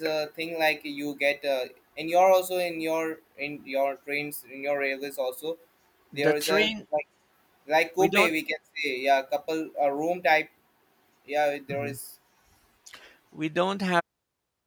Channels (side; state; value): both; identical; correlation 1.00